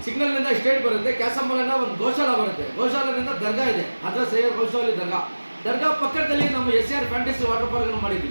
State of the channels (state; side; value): inverted; both; correlation -1.00